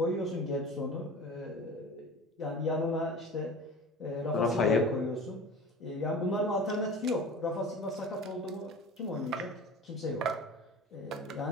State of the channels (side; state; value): both; normal; correlation 0.37